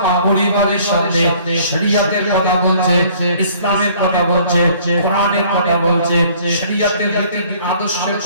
পরিবারের সামনে শরীয়তের কথা বলছে, ইসলামের কথা বলছে, কোরআনের কথা বলছে, শরীয়তের রীতি আদর্শের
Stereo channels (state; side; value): inverted; both; correlation -0.56